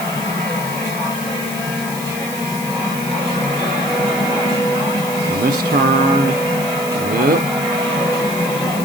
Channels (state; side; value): noise; left; hiss, 11 dB below the sound